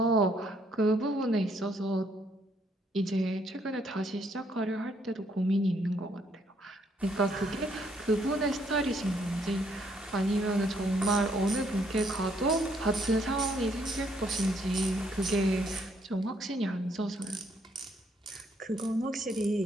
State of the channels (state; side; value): normal; both; correlation 0.70